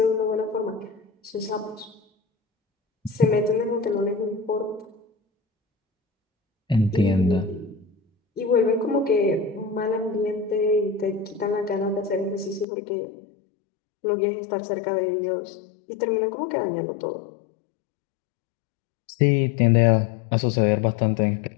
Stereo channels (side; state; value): right; drops out; at 12.7 s